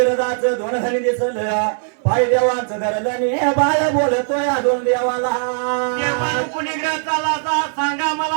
दोन धनी दिसल पाय देवाचं धरलं ने बाळ बोलतोय दोन देवाला चालाचा सांगा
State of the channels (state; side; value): silent; left; digital silence